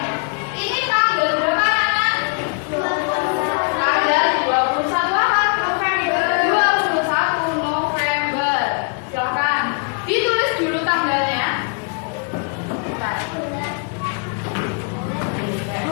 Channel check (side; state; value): right; quieter; 38.0 dB